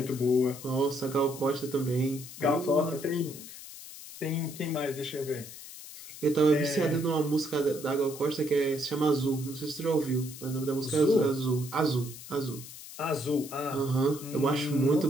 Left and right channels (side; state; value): left; noise; hiss, 14 dB below the sound